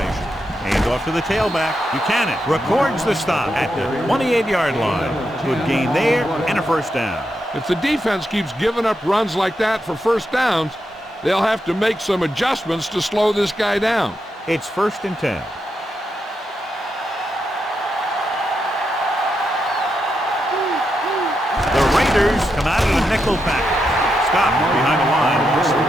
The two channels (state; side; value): normal; both; correlation 0.84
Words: Hand off to the tailback. Buchanan records the stop at the 28-yard line. Good gain there and a first down. If the defense keeps giving up runs like that for first downs, they'll have to make some adjustments to slow this guy down. It's 1st and 10. The Raiders come out of the nickel package. Scott behind the line.